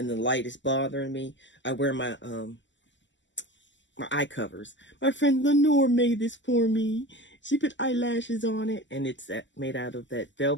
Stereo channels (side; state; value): right; late; 0.54 ms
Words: the light is bothering me, I wear my my eye covers. My friend Lenore made this for me. She put eyelashes on it, and it's made out of that